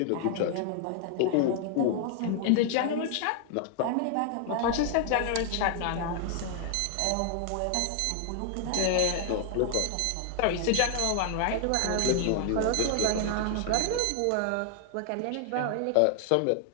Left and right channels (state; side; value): different; both; correlation 0.00